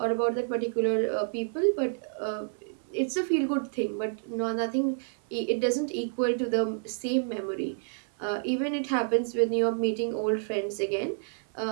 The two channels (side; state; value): left; silent; 59 dB below the other